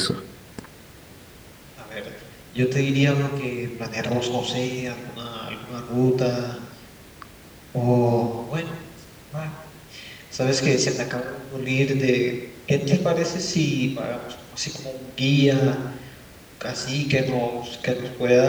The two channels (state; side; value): identical; both; correlation 1.00